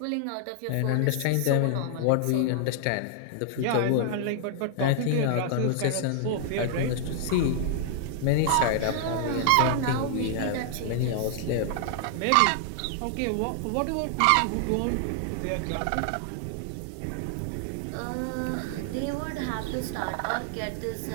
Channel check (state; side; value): different; both; correlation 0.00